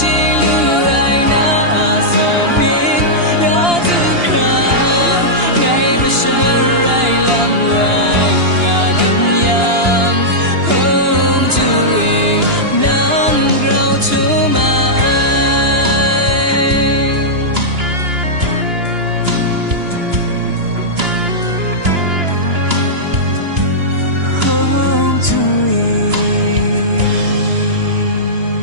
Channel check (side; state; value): left; late; 2.9 ms